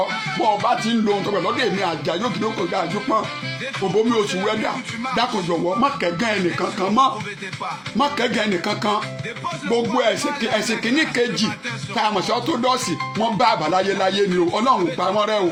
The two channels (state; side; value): identical; both; correlation 1.00